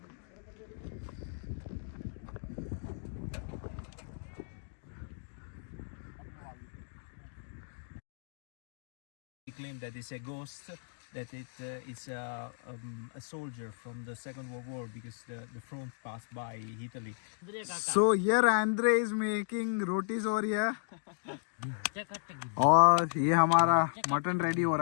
Claim that it's a ghost, that it's a soldier from the Second World War because the front passed by Italy. So here Andre is making rotis over here और ये हमारा मटन रेडी हो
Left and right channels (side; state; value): right; silent; digital silence